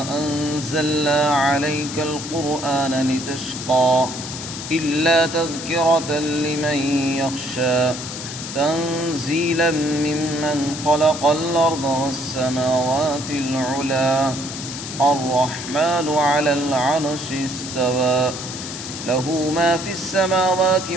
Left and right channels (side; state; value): left; noise; hiss, 9 dB below the sound